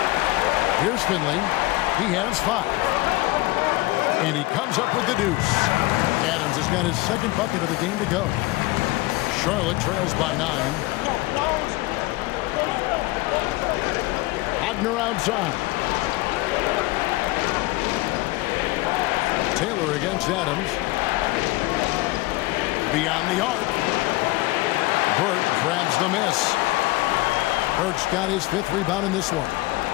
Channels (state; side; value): quieter; right; 20.3 dB